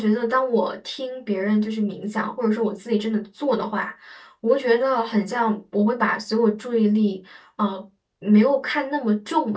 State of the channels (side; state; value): both; identical; correlation 1.00